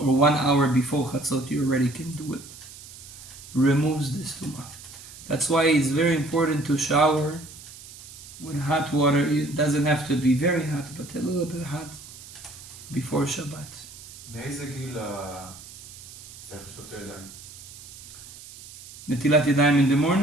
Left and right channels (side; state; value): right; noise; hiss, 17 dB below the sound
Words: or 1 hour before Chatzot, you already can do it. Removes this tumah. That's why it's very important to shower with hot water. It doesn't have to be very hot, but a little bit hot before Shabbat. מאיזה גיל צריך לשטוף את הידיים? נטילת ידיים in the